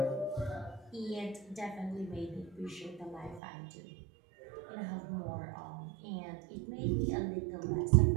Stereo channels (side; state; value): left; drops out; at 3.4 s